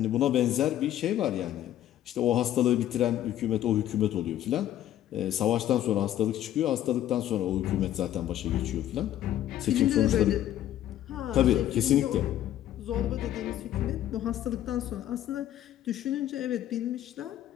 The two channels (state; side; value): quieter; right; 12.3 dB